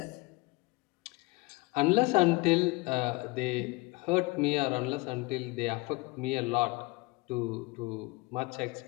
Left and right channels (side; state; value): right; quieter; 25.1 dB